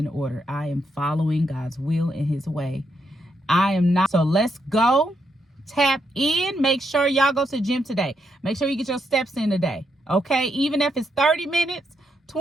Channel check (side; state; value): both; normal; correlation 0.79